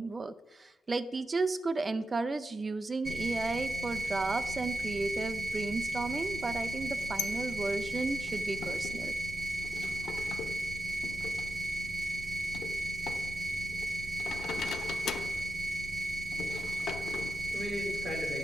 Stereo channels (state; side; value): normal; both; correlation 0.89